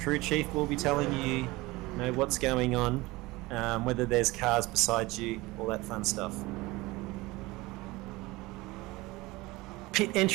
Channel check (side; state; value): left; quieter; 21.2 dB